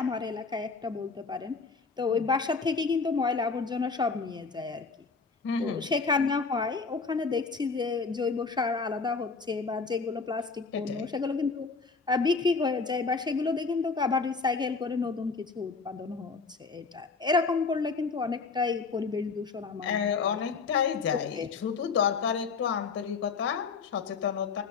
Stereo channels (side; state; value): right; quieter; 4.7 dB